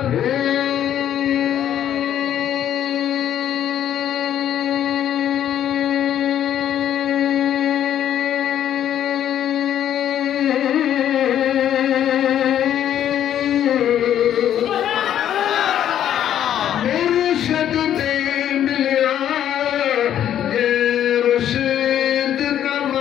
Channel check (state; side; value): quieter; right; 10.6 dB